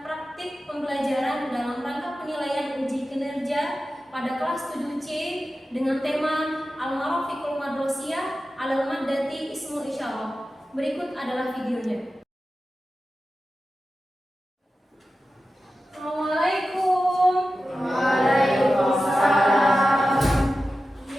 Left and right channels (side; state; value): both; normal; correlation 0.93